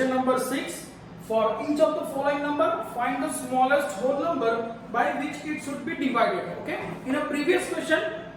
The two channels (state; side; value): identical; both; correlation 1.00